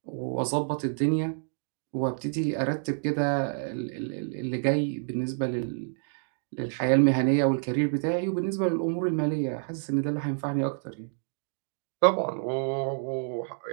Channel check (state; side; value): silent; left; digital silence